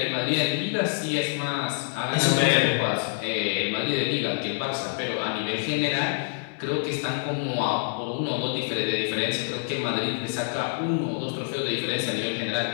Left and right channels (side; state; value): right; silent; 61 dB below the other